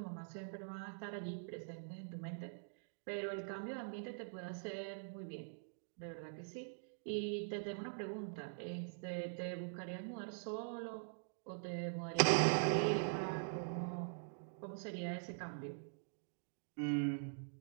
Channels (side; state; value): left; silent; digital silence